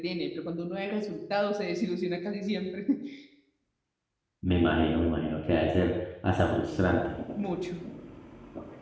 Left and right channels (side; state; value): both; identical; correlation 1.00